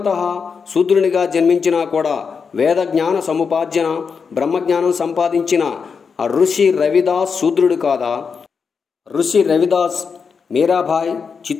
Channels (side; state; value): right; quieter; 5.7 dB